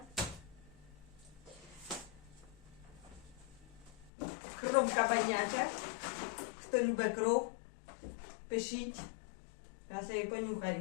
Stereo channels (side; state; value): right; drops out; at 4.1 s